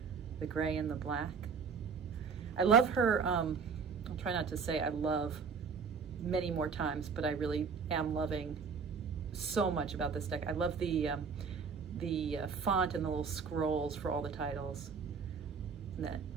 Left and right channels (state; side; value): quieter; left; 5.8 dB